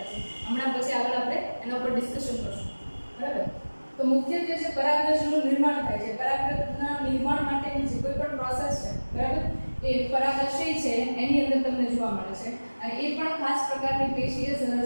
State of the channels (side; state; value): both; inverted; correlation -1.00